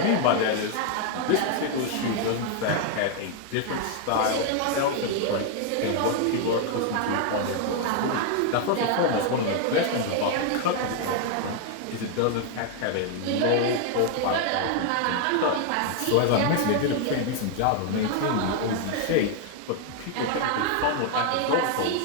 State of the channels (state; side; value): different; both; correlation 0.00